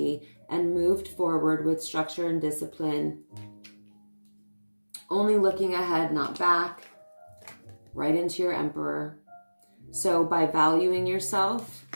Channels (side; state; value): both; inverted; correlation -1.00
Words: and moved forward with structure and discipline. Only looking ahead, not back. Right into your Emperor. So by valuing yourself,